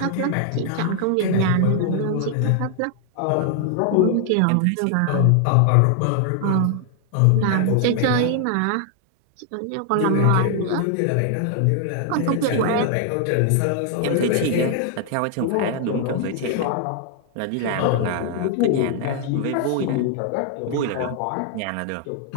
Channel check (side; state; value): both; different; correlation 0.00